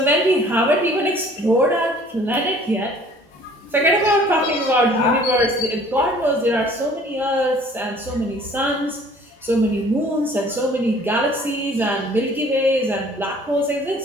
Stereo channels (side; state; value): both; normal; correlation 0.53